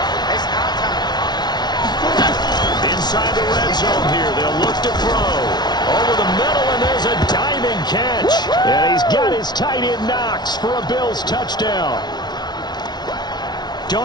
Inside the red zone here, they'll look to throw. Over the middle, and there's a diving catch. And he's got his tight end Knox for a Bills touchdown.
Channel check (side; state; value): right; late; 0.20 ms